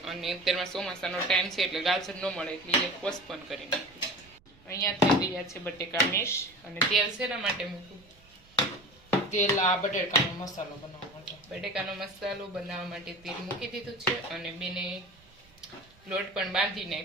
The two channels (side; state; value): right; noise; rumble, 28 dB below the sound